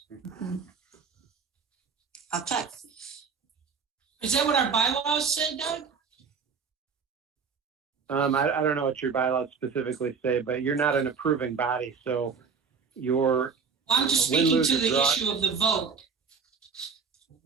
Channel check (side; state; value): left; quieter; 5.7 dB